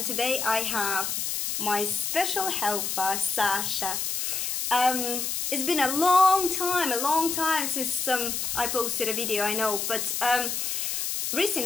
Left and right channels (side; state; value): left; noise; hiss, 1 dB below the sound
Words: today I have my special helper, Sasha. It's been a long time since I posted a video, I know, but